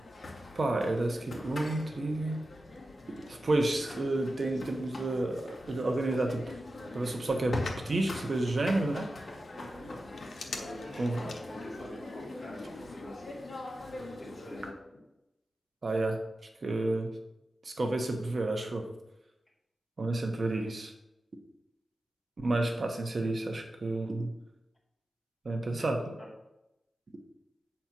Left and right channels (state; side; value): normal; both; correlation 0.92